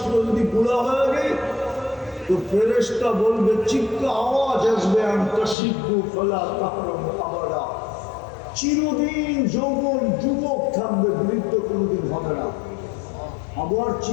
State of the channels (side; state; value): right; drops out; at 5.6 s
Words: যদি বুড়া হয়ে গেই তো ফেরেশতা বলবে, চিৎকার আওয়াজ আসবে, আনতাশিব্বু ফালা তাহরামু আবাদা, চিরদিন যৌবন যুবক থাকবে, বৃদ্ধ কোনোদিন হবে না। আবার